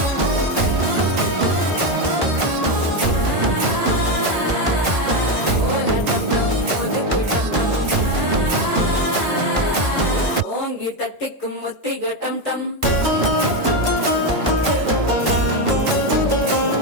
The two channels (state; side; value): late; left; 1.5 ms